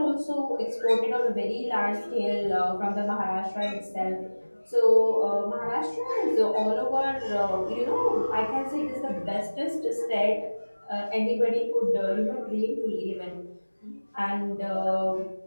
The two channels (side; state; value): both; inverted; correlation -1.00